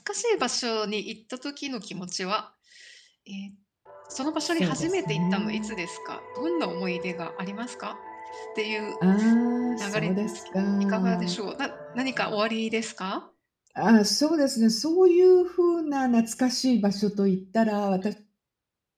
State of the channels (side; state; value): both; identical; correlation 1.00